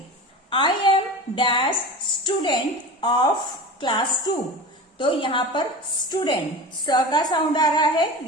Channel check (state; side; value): normal; both; correlation 0.31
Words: I am dash student of class 2। तो यहाँ पर स्टूडेंट स का साउंड आ रहा है,